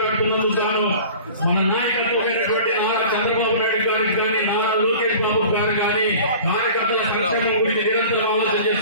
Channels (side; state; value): both; inverted; correlation -0.42